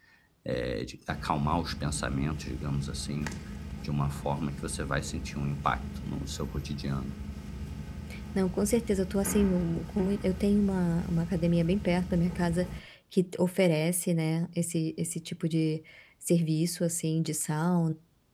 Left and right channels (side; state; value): both; identical; correlation 1.00